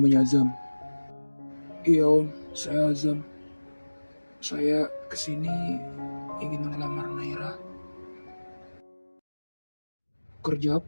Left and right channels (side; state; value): both; inverted; correlation -1.00